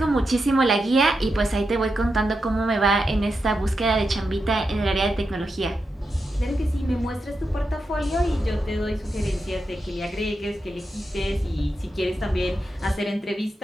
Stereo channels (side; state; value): both; normal; correlation 0.87